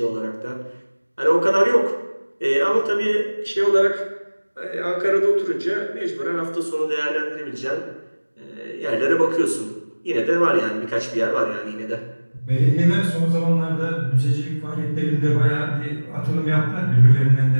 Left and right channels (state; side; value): inverted; both; correlation -1.00